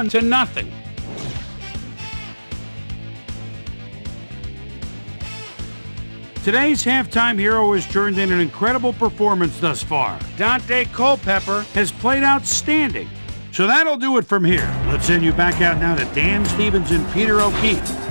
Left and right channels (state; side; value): inverted; both; correlation -1.00